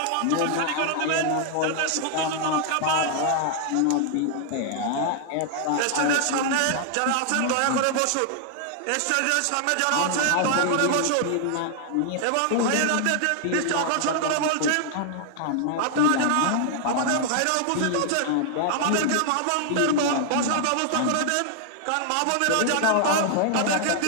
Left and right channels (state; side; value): different; both; correlation 0.00